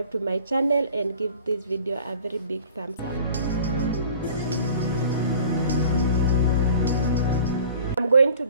to my channel and give this video a very big thumbs up. I'm going to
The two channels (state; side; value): inverted; both; correlation -0.46